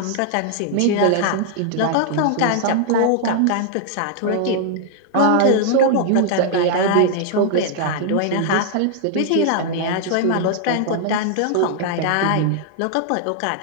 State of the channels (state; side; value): different; both; correlation -0.01